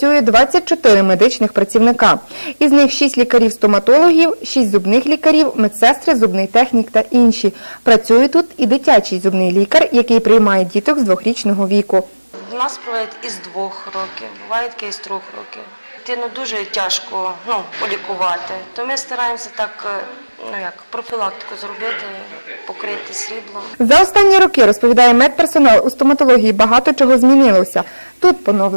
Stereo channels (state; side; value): inverted; both; correlation -1.00